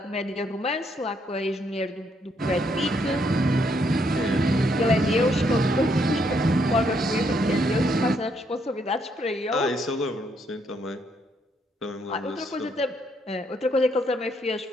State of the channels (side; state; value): both; normal; correlation 0.73